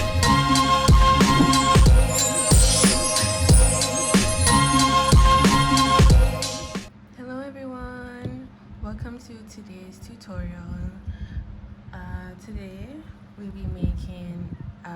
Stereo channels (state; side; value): identical; both; correlation 1.00